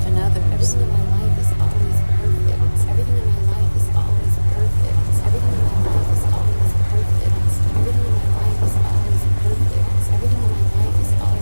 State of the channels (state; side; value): inverted; both; correlation -1.00